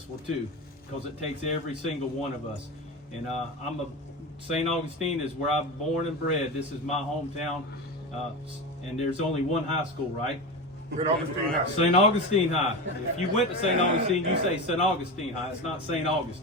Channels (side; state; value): both; normal; correlation 0.23